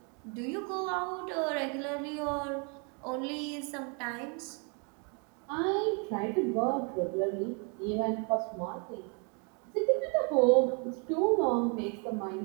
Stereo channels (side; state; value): left; quieter; 36.3 dB